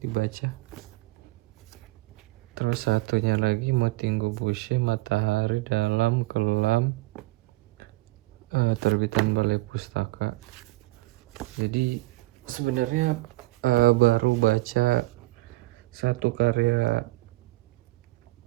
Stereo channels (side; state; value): left; quieter; 20.8 dB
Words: dibaca. Terus satunya lagi Motingo Boucher, Matahari dalam Kelam, terbitan Balai Pustaka. Jadi sebenarnya baru baca satu karya